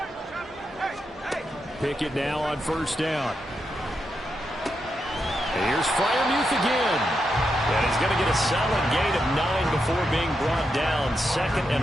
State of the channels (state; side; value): normal; both; correlation 0.85